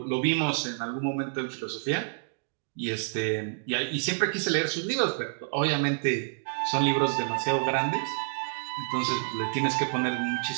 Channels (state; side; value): silent; left; digital silence